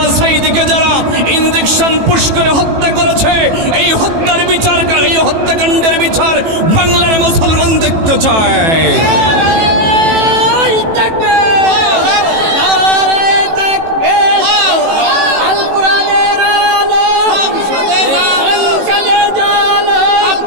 সাঈদীকে যারা ইনজেকশন পুশ করে হত্যা করেছে, এই হত্যাকাণ্ডের বিচার বাংলার মুসলমান দেখতে চায়। আল কোরআনের আলো সংসদে জালো,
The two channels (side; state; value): left; late; 18 ms